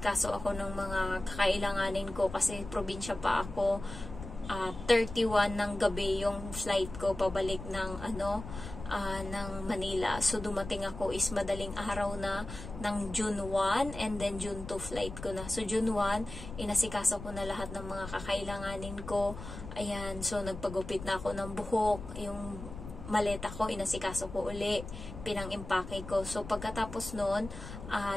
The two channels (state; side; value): noise; left; rumble, 11 dB below the sound